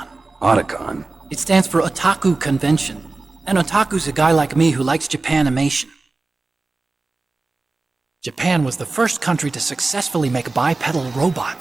Otacon? It stands for Otaku Convention. An otaku's a guy like me who likes Japanimation. Japan was the first country to successfully make bipedal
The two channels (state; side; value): quieter; left; 3.5 dB